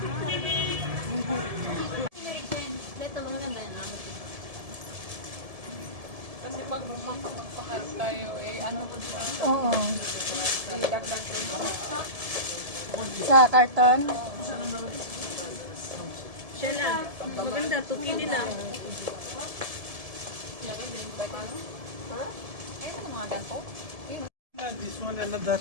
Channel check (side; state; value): left; late; 1.7 ms